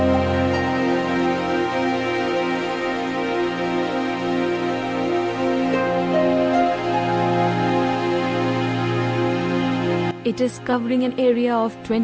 It is covering an area of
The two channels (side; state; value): both; identical; correlation 1.00